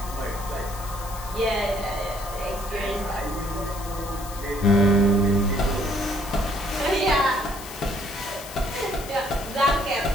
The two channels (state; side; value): noise; left; hiss, 14 dB below the sound